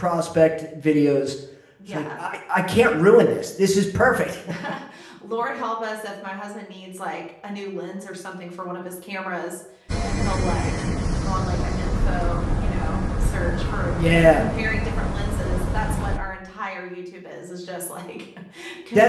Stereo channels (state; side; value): identical; both; correlation 1.00